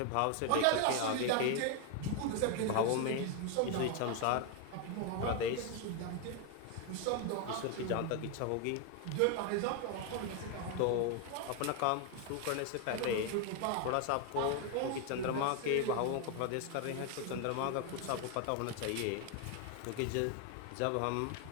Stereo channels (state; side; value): different; both; correlation 0.01